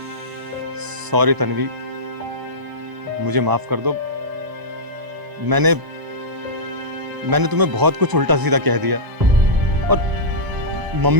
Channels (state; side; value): late; left; 1.0 ms